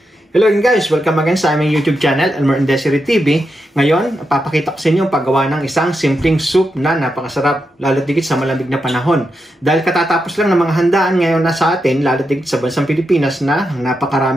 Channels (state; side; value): normal; both; correlation 0.86